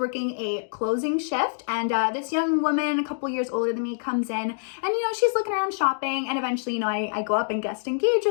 a closing shift, and this young woman, a couple years older than me, comes in, and you know, she's looking around shopping, and eventually, you know, I go up and guest engage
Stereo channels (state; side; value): silent; right; digital silence